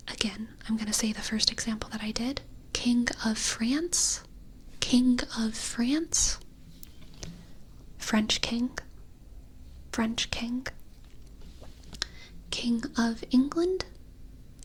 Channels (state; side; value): identical; both; correlation 1.00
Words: Again, I'm going to say the first example that I did. King of France. King of France. French king. French king. King of England.